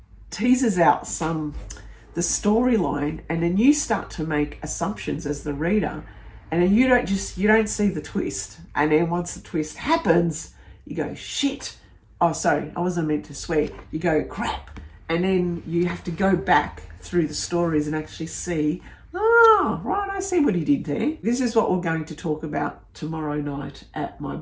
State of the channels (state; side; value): identical; both; correlation 1.00